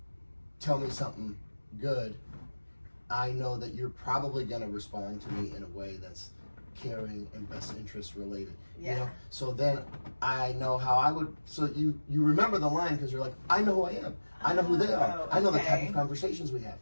tell me something good, I know that you're probably going to respond to me in a way that's caring and best interest related. Yeah. You know? So then I know how I would. So you remember the line because you're like, I know who I am. I know who they are. I know the type of conversations we have,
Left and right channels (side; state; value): both; inverted; correlation -1.00